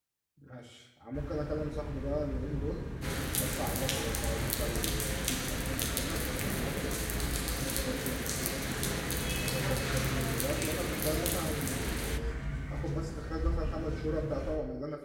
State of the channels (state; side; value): identical; both; correlation 1.00